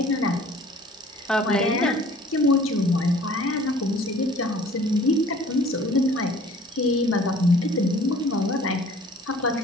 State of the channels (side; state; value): both; normal; correlation 0.51